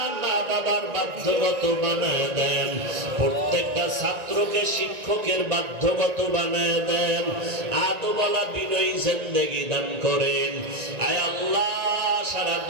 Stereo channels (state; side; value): late; left; 1.9 ms